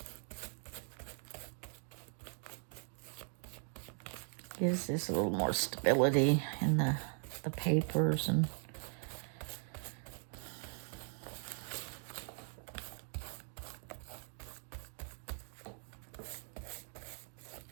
Gives this a little more stability in the papers and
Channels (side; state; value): left; silent; 51 dB below the other